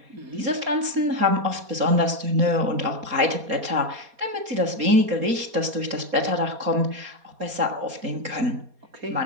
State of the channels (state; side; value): late; left; 4.2 ms